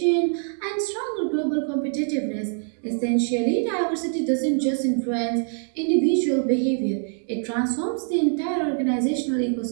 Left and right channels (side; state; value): left; silent; 60 dB below the other